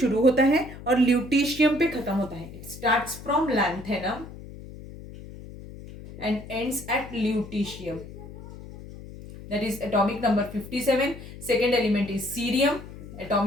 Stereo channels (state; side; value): noise; left; hum, 14 dB below the sound